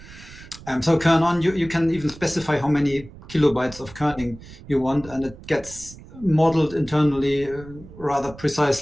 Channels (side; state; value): right; noise; rumble, 18 dB below the sound